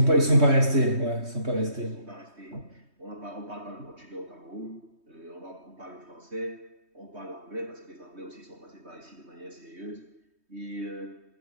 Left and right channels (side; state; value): left; late; 3.2 ms